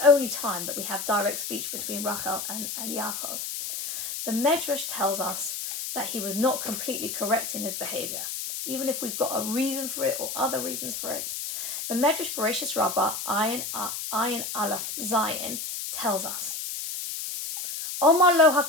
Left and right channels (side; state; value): left; noise; hiss, 5 dB below the sound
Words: only time that we have direct speech between Rachel and Yaakov. The Medrash tells us that he was not completely correct in his behavior, even if we've got a reason for it or other reasons for it. The Medrash Bereshis Rabbah, Ayin Aleph Zayin, tells us, Omar lo